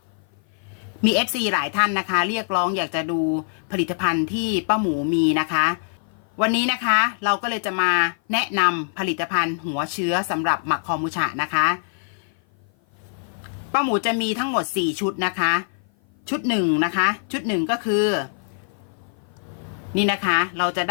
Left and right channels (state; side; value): silent; right; 55 dB below the other